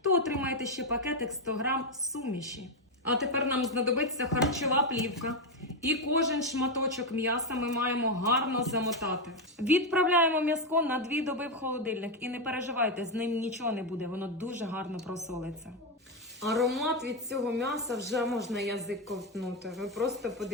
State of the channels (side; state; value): both; normal; correlation 0.06